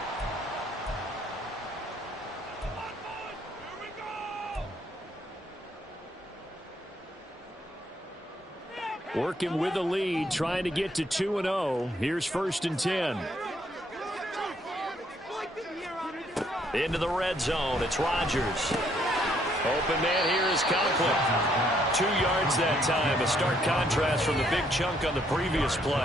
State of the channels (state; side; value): normal; both; correlation 0.69